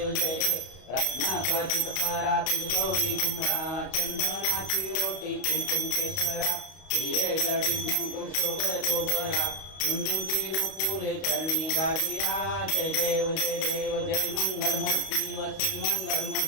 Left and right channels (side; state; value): right; late; 32 ms